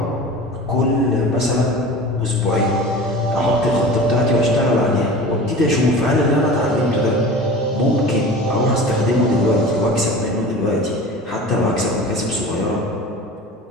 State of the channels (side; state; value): both; normal; correlation 0.36